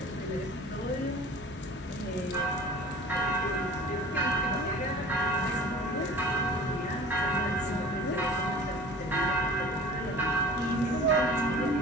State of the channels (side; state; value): both; normal; correlation 0.42